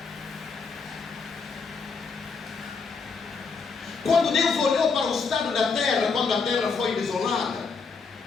Quando Deus olhou para o estado da terra, quando a terra foi desolada,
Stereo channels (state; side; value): quieter; right; 5.0 dB